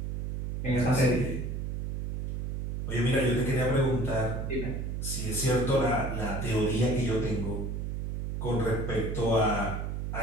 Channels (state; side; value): noise; right; hum, 3 dB below the sound